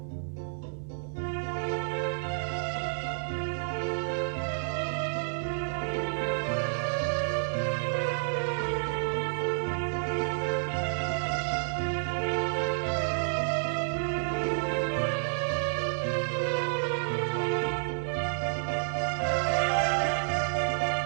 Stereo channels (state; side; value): silent; left; digital silence